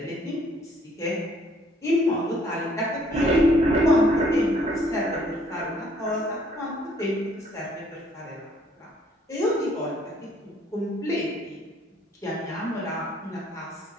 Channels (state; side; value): normal; both; correlation 0.63